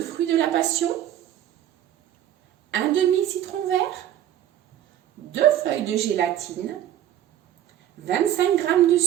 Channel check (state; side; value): quieter; left; 11.7 dB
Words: de la passion, un demi citron vert, 2 feuilles de gélatine, 25 g de